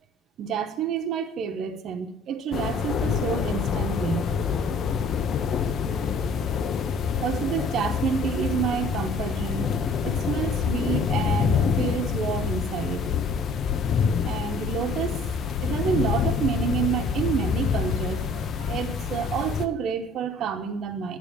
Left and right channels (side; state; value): both; normal; correlation 0.52